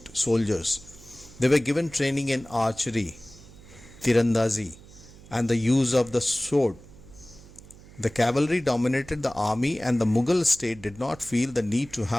soldiers. They were given training in archery, tirandazi, and the use of the sword. The cavalry dominated the army, and the Mughal state did not feel the need to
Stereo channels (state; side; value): noise; right; hum, 21 dB below the sound